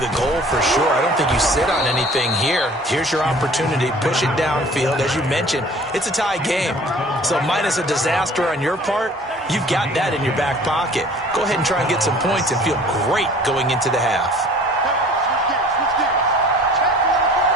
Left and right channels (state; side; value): normal; both; correlation 0.49